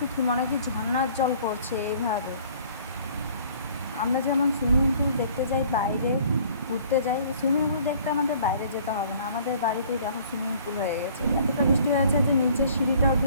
কি, মনে হয় কি ঝর্ণার জল পড়ছে এইভাবে। আমরা যেমন সুইমিং পুল দেখতে যাই, বাইরে ঘুরতে যাই, সুইমিং পুল দেখতে আমাদের বাইরে যেতে হবে না, আমাদের বাড়িতেই দেখো সুইমিং পুল হয়ে গেছে। এতটা বৃষ্টি হয়েছে যে নিচের সিঁড়িটা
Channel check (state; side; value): inverted; both; correlation -0.55